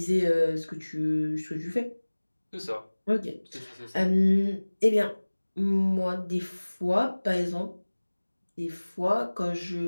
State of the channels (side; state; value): both; inverted; correlation -1.00